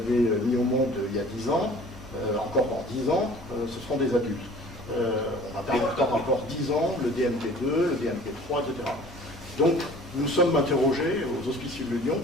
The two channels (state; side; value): normal; both; correlation 0.48